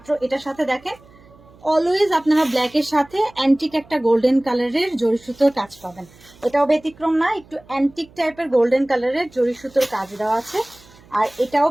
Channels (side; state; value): right; noise; hum, 26 dB below the sound